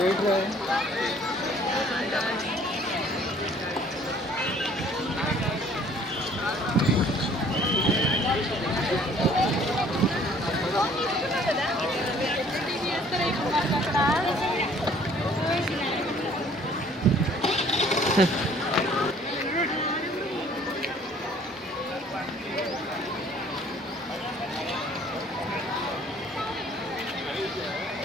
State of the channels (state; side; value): normal; both; correlation 0.56